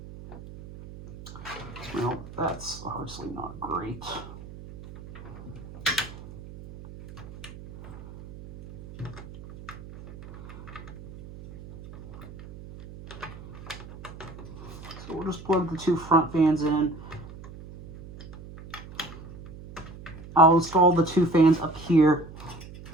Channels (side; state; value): right; noise; hum, 15 dB below the sound